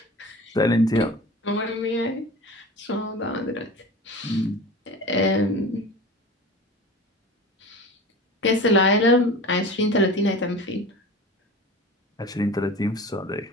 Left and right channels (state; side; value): normal; both; correlation 0.35